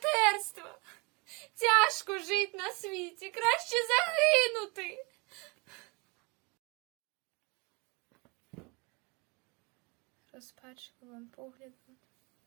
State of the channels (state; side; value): quieter; left; 29.3 dB